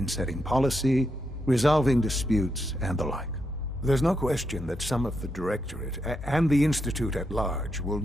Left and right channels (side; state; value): both; normal; correlation 0.82